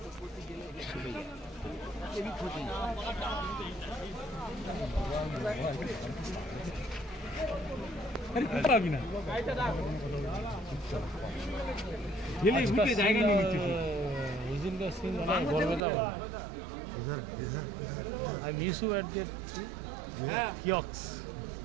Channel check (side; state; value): left; drops out; at 15.8 s